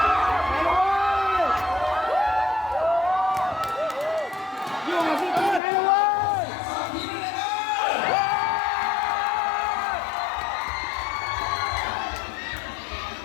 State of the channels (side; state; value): right; drops out; at 5.6 s